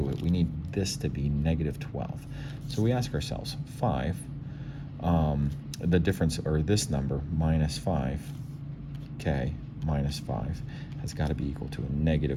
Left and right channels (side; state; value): both; identical; correlation 1.00